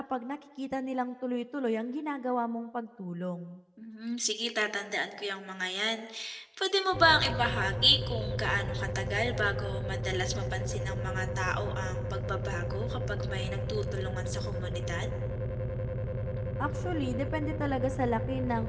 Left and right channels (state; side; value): identical; both; correlation 1.00